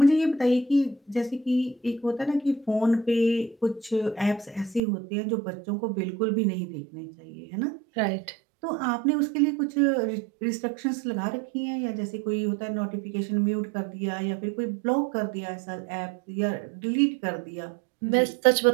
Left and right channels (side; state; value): left; drops out; at 4.8 s